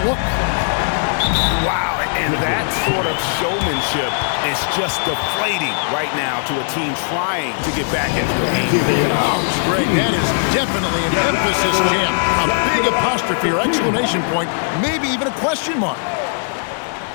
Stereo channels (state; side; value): silent; right; 67 dB below the other